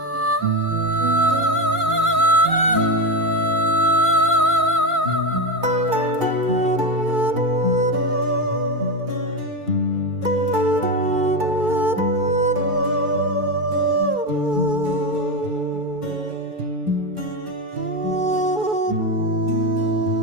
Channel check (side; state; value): left; late; 2.4 ms